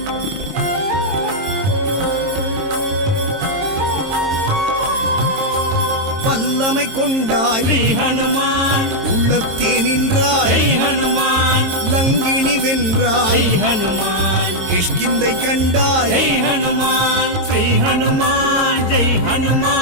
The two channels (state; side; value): late; left; 22 ms